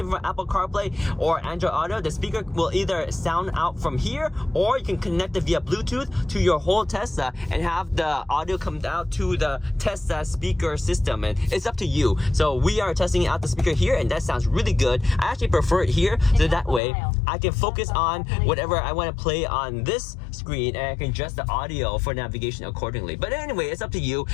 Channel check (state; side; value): drops out; right; at 16.8 s